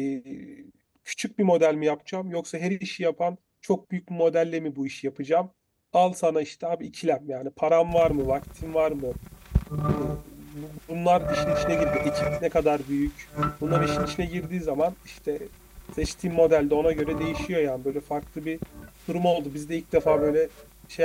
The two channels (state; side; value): identical; both; correlation 1.00